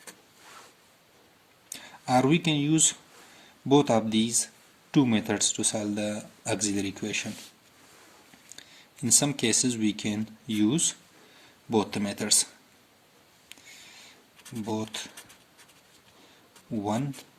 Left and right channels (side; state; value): both; identical; correlation 1.00